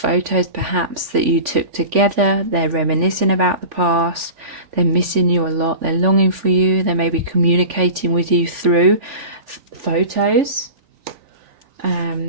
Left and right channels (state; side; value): late; left; 3.5 ms